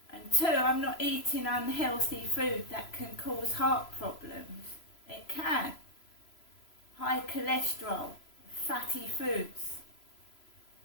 And 2, I'm not eating unhealthy food that can cause heart problems. It can. High cholesterol, fatty foods.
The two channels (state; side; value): late; right; 3.0 ms